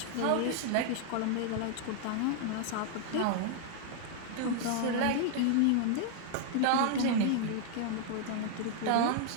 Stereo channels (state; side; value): different; both; correlation 0.00